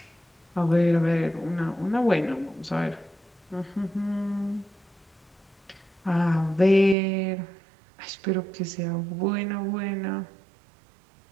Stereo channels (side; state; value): left; drops out; at 7.0 s